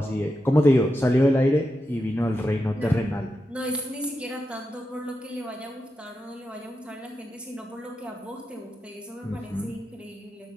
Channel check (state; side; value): normal; both; correlation 0.88